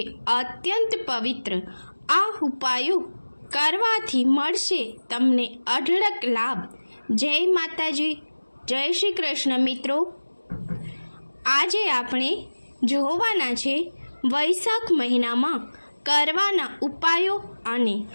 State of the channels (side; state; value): both; inverted; correlation -1.00